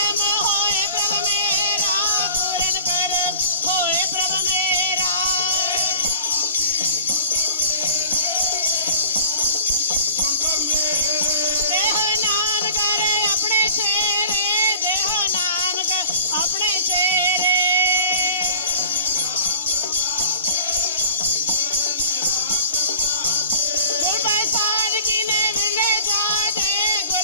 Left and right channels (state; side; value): inverted; both; correlation -0.46